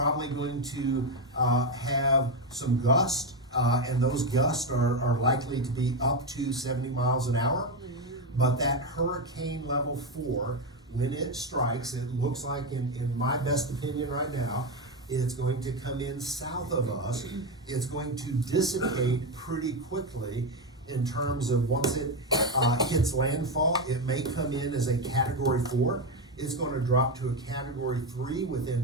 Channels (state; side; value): normal; both; correlation 0.10